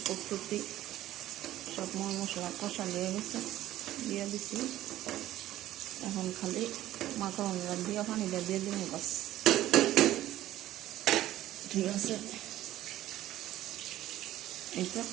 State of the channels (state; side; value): quieter; left; 14.1 dB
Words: প্রস্তুতি, সব মশলা কষা দিয়ে দিচ্ছি। এখন খালি মাকড়না দিয়ে পানিটা দিয়ে দিন বাস, ঠিক আছে। এই তো